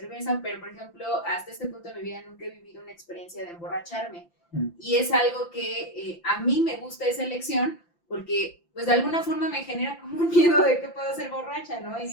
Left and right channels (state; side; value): late; right; 5.8 ms